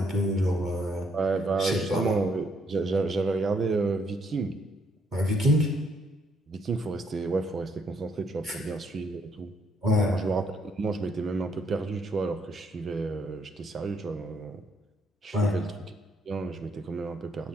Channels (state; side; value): normal; both; correlation 0.71